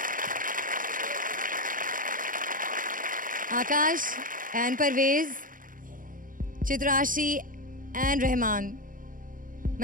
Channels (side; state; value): left; late; 0.40 ms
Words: आकाश एंड परवेज, चित्राशी एंड रहमान,